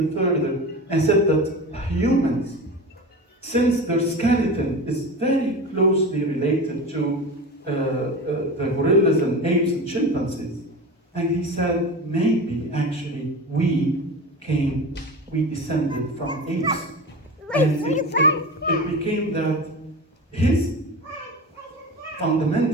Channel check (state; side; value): normal; both; correlation 0.29